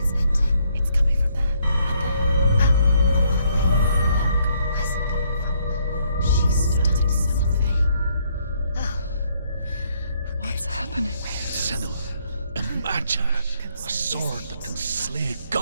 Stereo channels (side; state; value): both; inverted; correlation -0.69